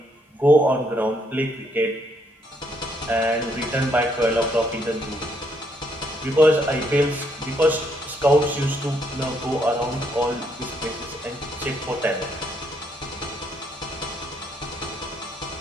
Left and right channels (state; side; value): normal; both; correlation 0.72